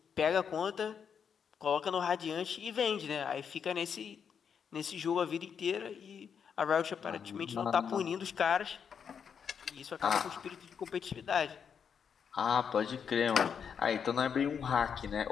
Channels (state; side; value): quieter; right; 7.2 dB